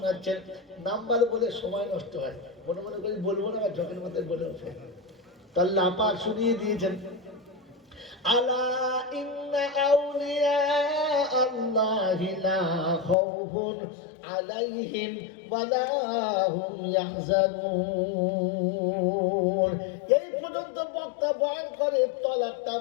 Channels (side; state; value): right; drops out; at 13.2 s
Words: নাম্বার বলে সময় নষ্ট হয়, মনে মনে করি বলবো না, ঝকের মধ্যে বলে ওঠে। আল্লাহ পাক শুনিয়ে দিয়েছেন, আলা ইন্না আউলিয়া আল্লাহি লা খাউফুন আলাইহিম ওয়া লা হুম ইয়াহজানুন। এই পর্যন্ত বক্তা বয়ান করে, তলাকটা